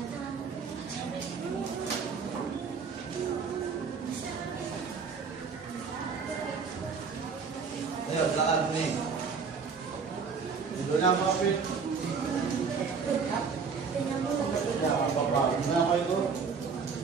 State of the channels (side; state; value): left; quieter; 5.5 dB